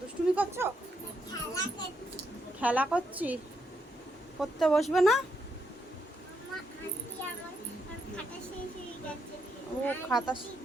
দুষ্টুমি করছো? খেলা করছি। পড়তে বসবে না? ও খাতা,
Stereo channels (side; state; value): both; normal; correlation 0.79